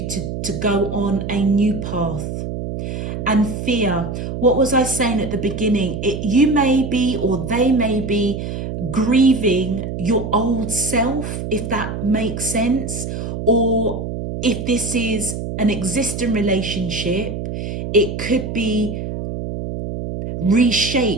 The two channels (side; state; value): right; noise; hum, 5 dB below the sound